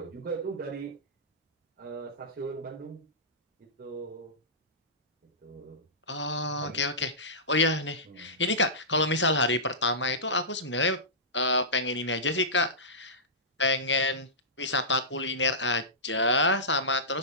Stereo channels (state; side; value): normal; both; correlation -0.19